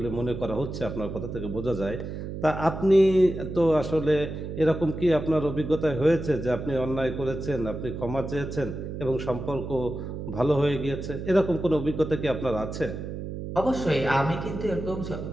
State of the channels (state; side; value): noise; right; hum, 7 dB below the sound